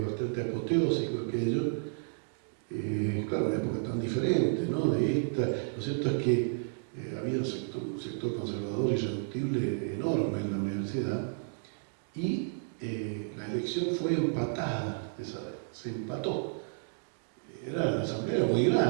bastante apoteósico aquello. Claro, una época tan diferente, ¿no? De esta. Lo cierto es que había un sector conservador y irreductible enorme en la universidad y la elección fue empatada, se empató. La asamblea era muy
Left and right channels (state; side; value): silent; left; digital silence